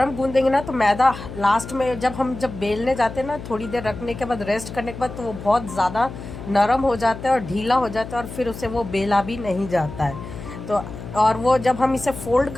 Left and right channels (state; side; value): noise; left; hum, 11 dB below the sound